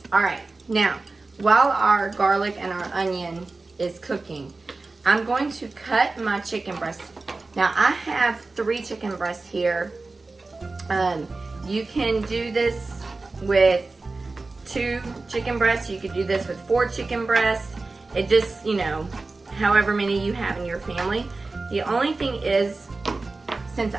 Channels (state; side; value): quieter; left; 3.6 dB